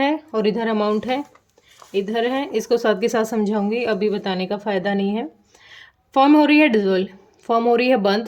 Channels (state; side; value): identical; both; correlation 1.00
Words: और इधर अमाउंट है, इधर है। इसको साथ के साथ समझाऊंगी, अभी बताने का फ़ायदा नहीं है। फॉर्म हो रही है डिजोल्व, फॉर्म हो रही है